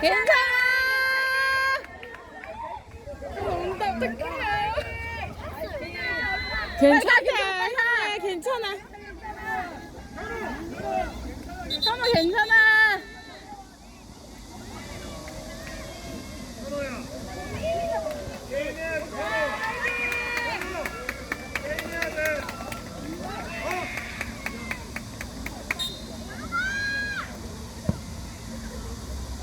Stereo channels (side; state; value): both; identical; correlation 1.00